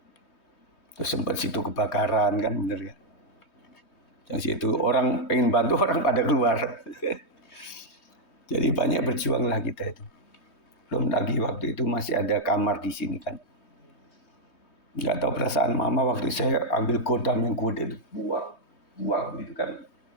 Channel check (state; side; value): late; right; 3.2 ms